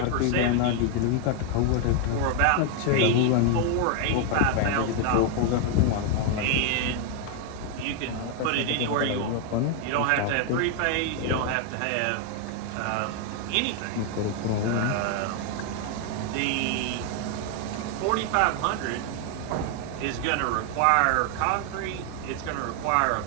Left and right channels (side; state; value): both; different; correlation 0.00